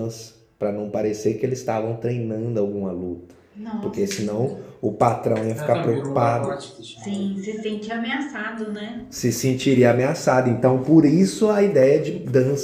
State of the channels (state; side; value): identical; both; correlation 1.00